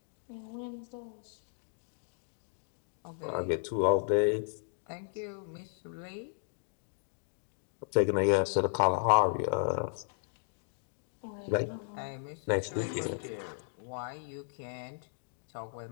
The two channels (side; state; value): right; silent; digital silence